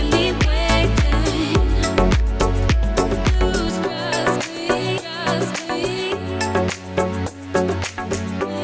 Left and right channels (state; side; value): identical; both; correlation 1.00